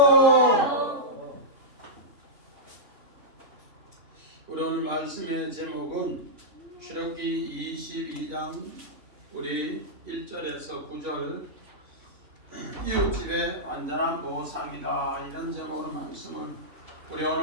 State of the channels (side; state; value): left; late; 3.1 ms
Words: 우리 오늘 말씀의 제목은 출애굽기 22장 우리 1절에서 9절 이웃집의 완전한 보상이다, 이런 제목으로 말씀을 우리